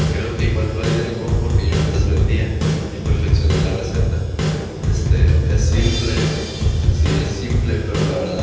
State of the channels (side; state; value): both; identical; correlation 1.00